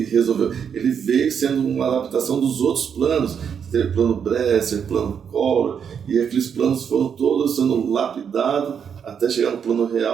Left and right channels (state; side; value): quieter; left; 7.4 dB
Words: resolveu. Ele veio sendo uma adaptação dos outros planos. Teve plano Bresser, plano Collor, e aqueles planos foram todos sendo lapidados até chegar no plano